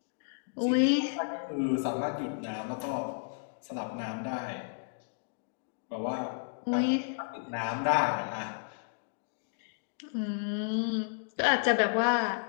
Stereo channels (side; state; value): right; silent; digital silence